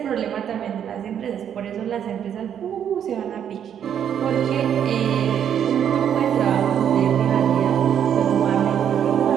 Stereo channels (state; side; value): quieter; left; 9.0 dB